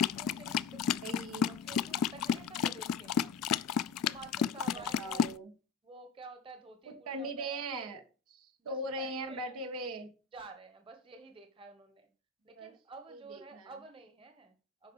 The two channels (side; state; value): right; quieter; 5.4 dB